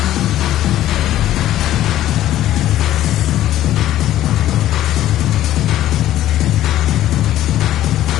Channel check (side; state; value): right; quieter; 13.3 dB